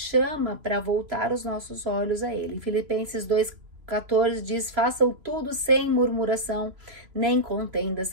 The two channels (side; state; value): left; late; 3.0 ms